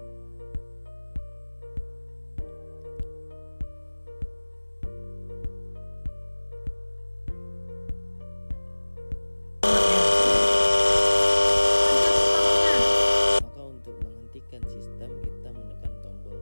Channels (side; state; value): both; inverted; correlation -1.00